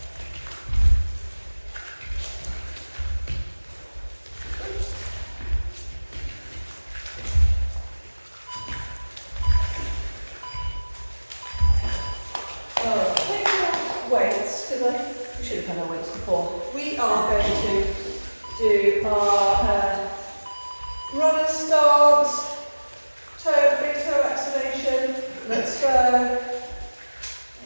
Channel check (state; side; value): inverted; both; correlation -1.00